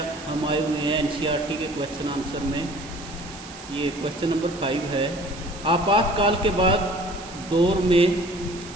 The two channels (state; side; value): noise; right; hiss, 16 dB below the sound